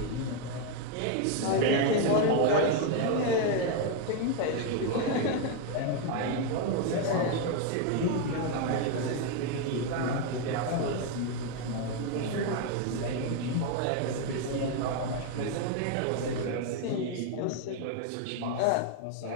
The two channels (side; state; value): both; different; correlation 0.01